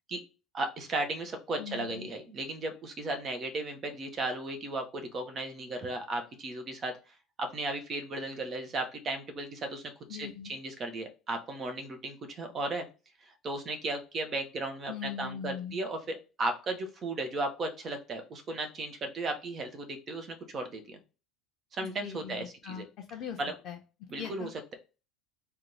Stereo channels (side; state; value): both; normal; correlation 0.56